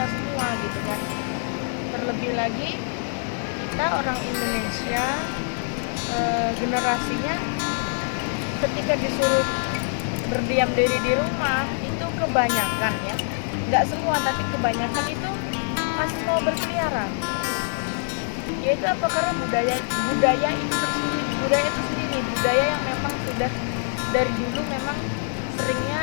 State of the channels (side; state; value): right; silent; digital silence